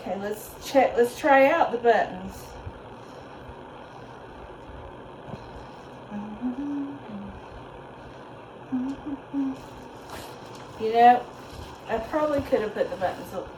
let's check. Let's try out the buttons. You know, I probably could have put the buttons,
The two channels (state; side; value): identical; both; correlation 1.00